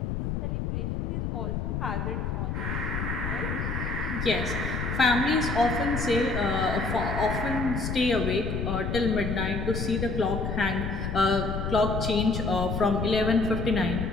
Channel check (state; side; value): noise; left; rumble, 2 dB below the sound